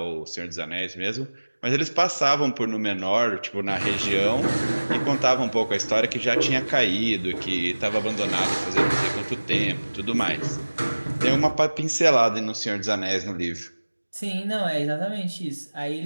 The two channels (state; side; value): inverted; both; correlation -1.00